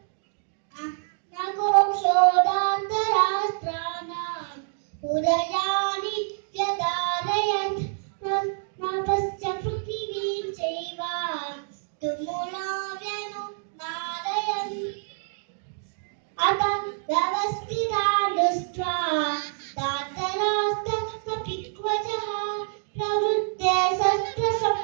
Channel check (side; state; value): left; silent; digital silence